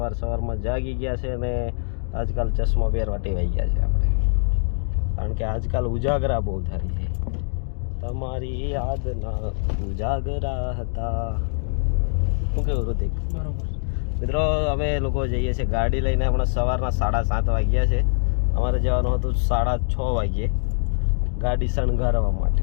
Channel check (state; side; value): silent; right; 63 dB below the other